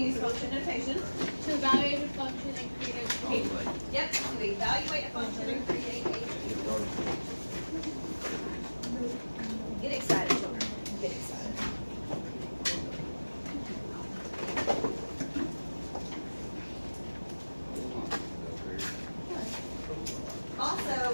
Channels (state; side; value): inverted; both; correlation -1.00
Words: function notation. to evaluate a function and create a Oh, table. like, Yep, to evaluate a function and create a table. Get excited, children. Get excited. Also,